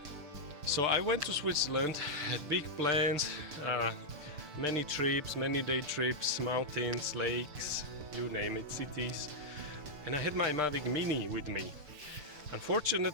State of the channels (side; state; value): left; late; 6.8 ms